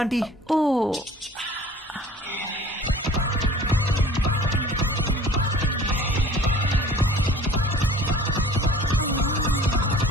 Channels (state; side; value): normal; both; correlation 0.48